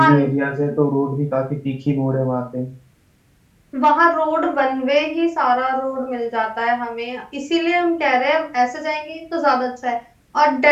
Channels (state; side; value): identical; both; correlation 1.00